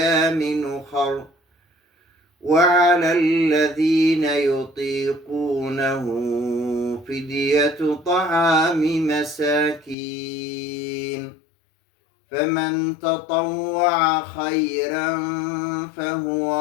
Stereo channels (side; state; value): right; drops out; at 10.0 s